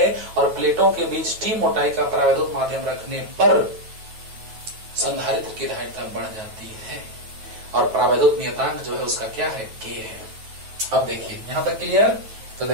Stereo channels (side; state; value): left; late; 9.2 ms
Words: और प्लेटों के बीच टी मोटाई का परावैद्युत माध्यम रखने पर संधारित्र की धारिता बढ़ जाती है और परावैद्युत नियतांक जो है उसका क्या है? के है। अब देखिए यहां तक क्लियर। तो